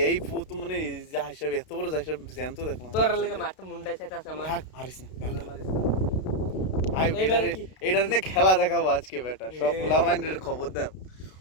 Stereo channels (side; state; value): right; late; 32 ms